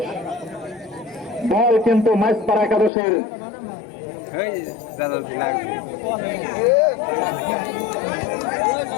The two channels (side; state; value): right; drops out; at 2.9 s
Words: বল কিন্তু মাইজপাড়া একাদশের